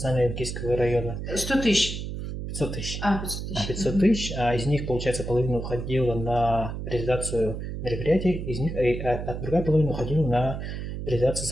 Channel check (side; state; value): right; noise; hum, 6 dB below the sound